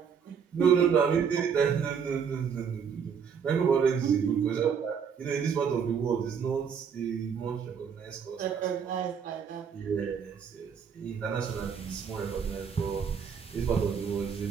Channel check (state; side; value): quieter; left; 6.9 dB